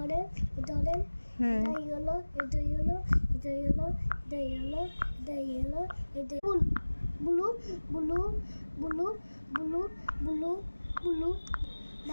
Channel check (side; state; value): both; inverted; correlation -1.00